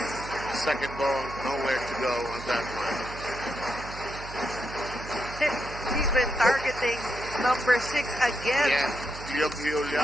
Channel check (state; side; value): noise; right; hum, 12 dB below the sound